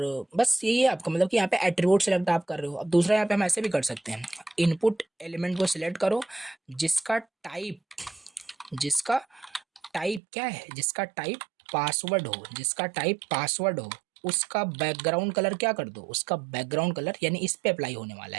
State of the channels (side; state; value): left; drops out; at 10.2 s